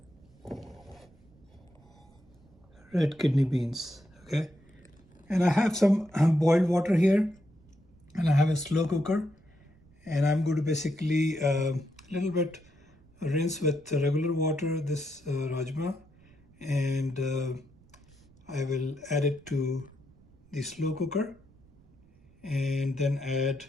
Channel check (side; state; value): right; noise; rumble, 28 dB below the sound